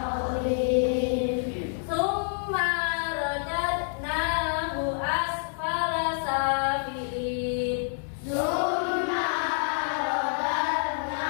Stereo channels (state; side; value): silent; right; 60 dB below the other